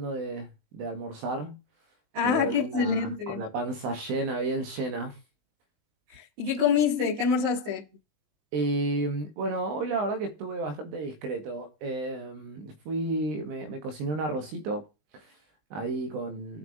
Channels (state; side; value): late; left; 19 ms